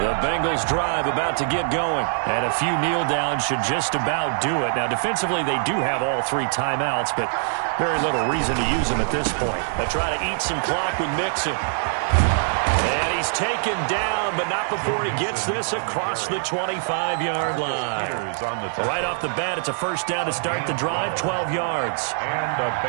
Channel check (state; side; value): silent; left; 63 dB below the other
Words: Bengals drive about to get going. And a few kneel downs should just about do it. Now, defensively, they do have all 3 timeouts, but very little reason to use them at this point. They try to eat some clock with Mixon. And he's taken down, but not before he gets this across the 25-yard line. Right off the bat, it's a 1st down to start the drive, 12 yards. And a